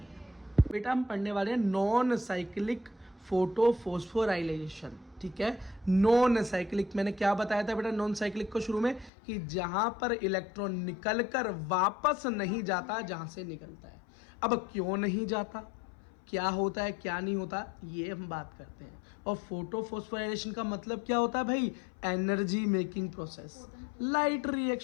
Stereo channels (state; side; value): drops out; right; at 9.1 s